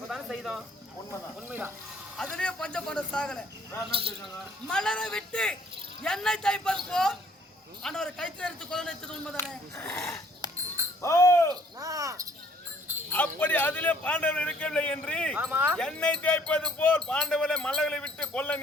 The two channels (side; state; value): both; normal; correlation 0.61